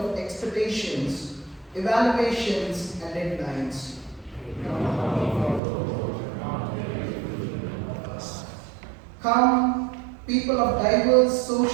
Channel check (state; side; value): drops out; left; at 5.6 s